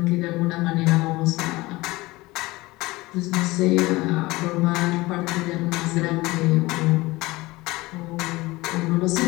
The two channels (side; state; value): right; quieter; 20.7 dB